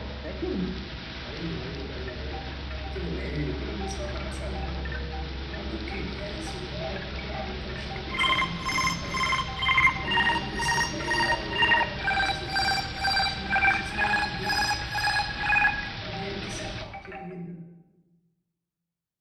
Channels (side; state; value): both; identical; correlation 1.00